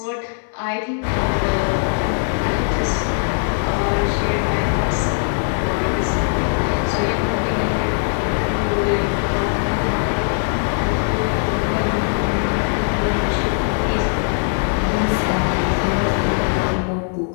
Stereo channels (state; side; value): silent; right; 63 dB below the other